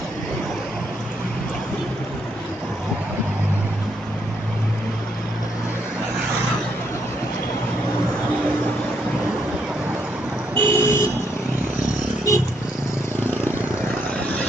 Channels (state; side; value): normal; both; correlation 0.74